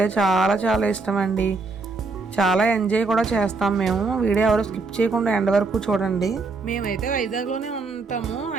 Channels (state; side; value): quieter; left; 3.9 dB